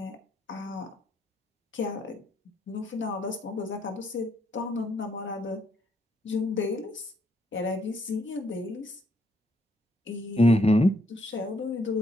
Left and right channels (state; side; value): normal; both; correlation 0.73